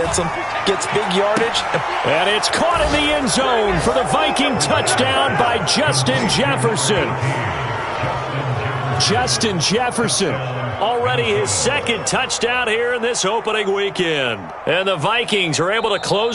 them, gets big yardage. And it's caught in the end zone for the Viking touchdown by Justin Jefferson. Justin Jefferson, already his 2nd touchdown here in this opening weekend. And the Vikings are able to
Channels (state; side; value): identical; both; correlation 1.00